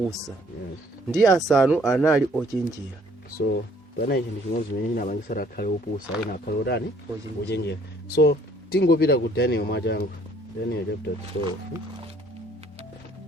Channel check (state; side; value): normal; both; correlation 0.60